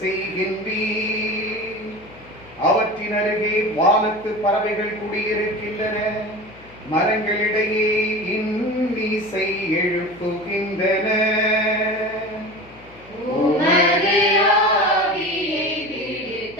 செய்கின்றீர். அவற்றின் அருகே வானத்து பறவைகள் குடியிருக்கின்றன. மரங்களிடையே இன்னிசை எழுப்புகின்றன. உமது ஆவியை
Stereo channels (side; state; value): left; noise; hum, 24 dB below the sound